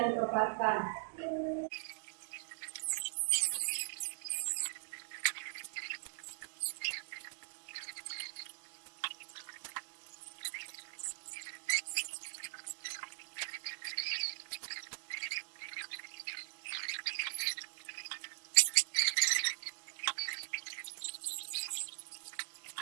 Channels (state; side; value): silent; left; digital silence